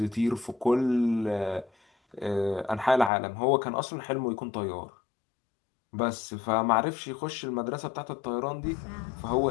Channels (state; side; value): drops out; right; at 3.1 s